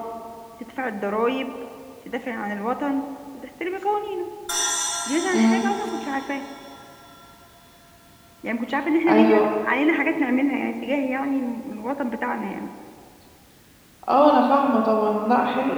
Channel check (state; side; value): identical; both; correlation 1.00